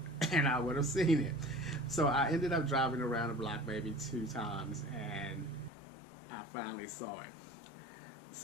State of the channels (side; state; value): right; drops out; at 5.7 s